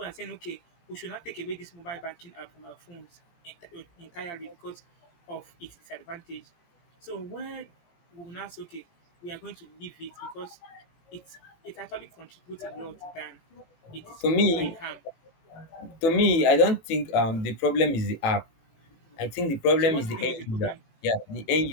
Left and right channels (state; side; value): late; right; 18 ms